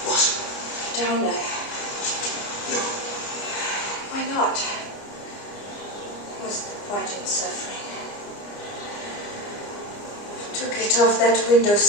What? Down there. No. Why not? What's the point in suffering? To get off that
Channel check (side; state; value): right; late; 29 ms